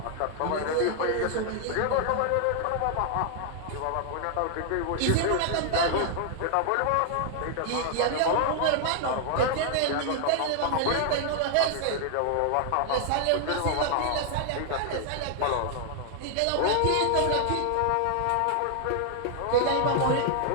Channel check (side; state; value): both; different; correlation 0.00